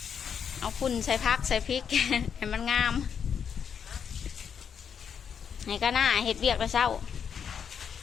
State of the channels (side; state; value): right; quieter; 7.4 dB